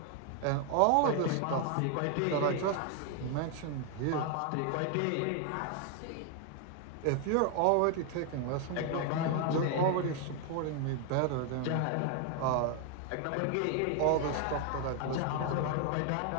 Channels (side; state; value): both; different; correlation 0.00